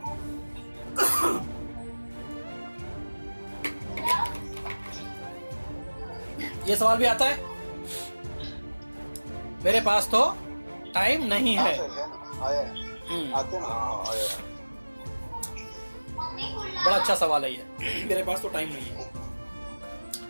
ये सवाल भी आता है. मेरे पास तो टाइम नहीं है. आया आते ना आया. बड़ा अच्छा सवाल है ये. मेरे पास तो टाइम नहीं है.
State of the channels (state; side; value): inverted; both; correlation -1.00